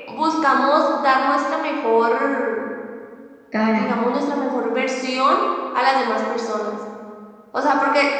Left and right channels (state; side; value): identical; both; correlation 1.00